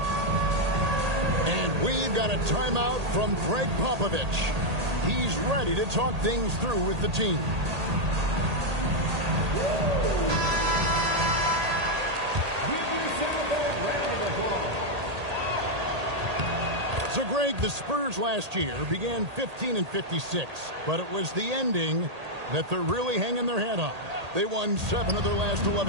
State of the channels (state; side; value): late; left; 1.8 ms